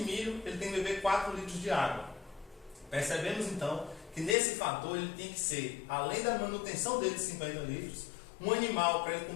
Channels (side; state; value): right; drops out; at 4.4 s